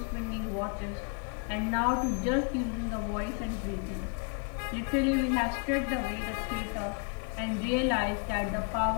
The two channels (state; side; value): quieter; right; 39.1 dB